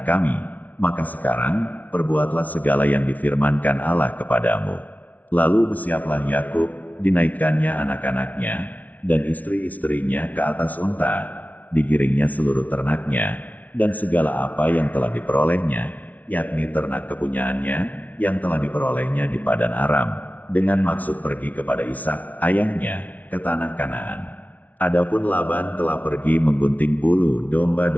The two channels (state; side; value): late; right; 0.073 ms